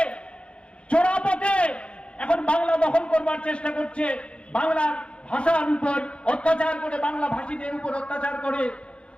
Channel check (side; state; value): right; late; 0.059 ms